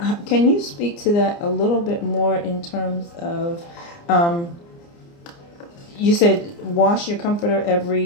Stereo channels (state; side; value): late; right; 29 ms